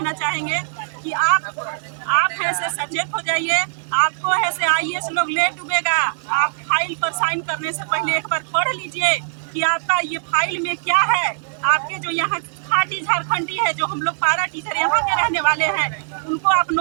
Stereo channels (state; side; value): silent; left; 61 dB below the other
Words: चाहेंगे कि आप ऐसे सचेत हो जाइए। आपको ऐसे IAS लोग ले डूबेगा। आप फाइल पर साइन करने से पहले एक बार पढ़ लीजिए कि आपका ये फाइल में क्या है। आपके जो यहाँ खाटी झारखंडी है, जो हम लोग पारा टीचर यहाँ के रहने वाले हैं, उनको आप